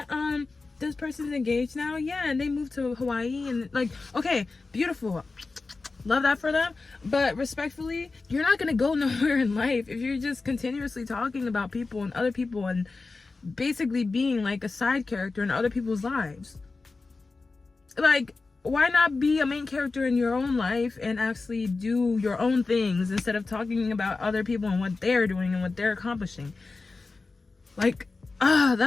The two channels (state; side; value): quieter; right; 3.9 dB